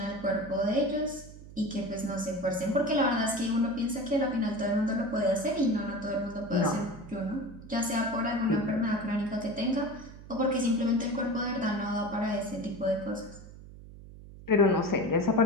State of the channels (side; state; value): right; noise; hum, 17 dB below the sound